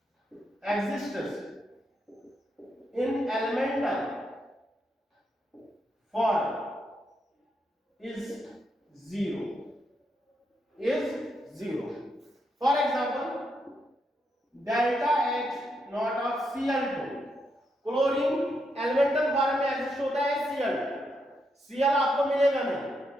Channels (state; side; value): normal; both; correlation 0.80